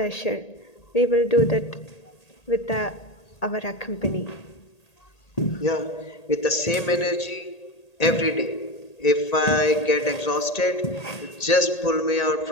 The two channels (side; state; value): right; late; 1.8 ms